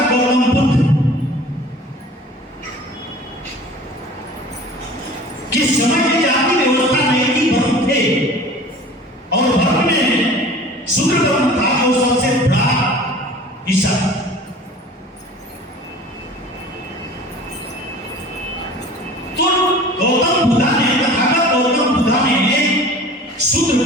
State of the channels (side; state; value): both; normal; correlation 0.43